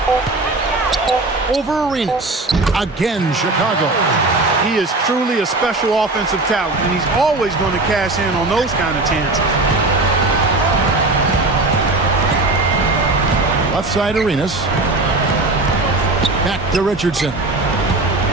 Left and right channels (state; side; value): quieter; left; 3.1 dB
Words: Over Arenas. Again, Chicago. He is truly a special offensive talent, and he's always going to cash in on those kind of chances. Left side Arenas. Back to Richardson.